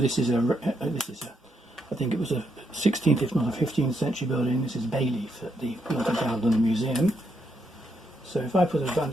is I think it was a 16th, if not a 15th century building. This is Bayleaf at the Building Ground London Museum. So if I put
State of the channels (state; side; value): normal; both; correlation 0.79